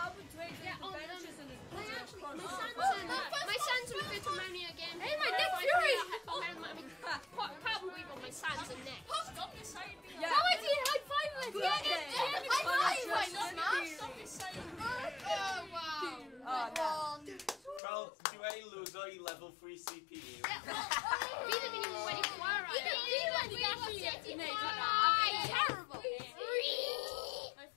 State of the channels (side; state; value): right; drops out; at 17.8 s